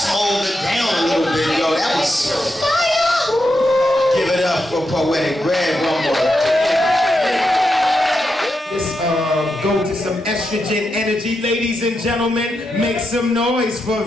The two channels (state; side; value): normal; both; correlation 0.85